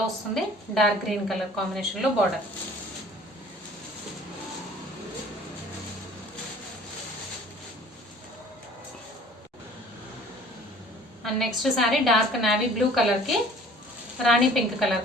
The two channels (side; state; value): both; normal; correlation 0.50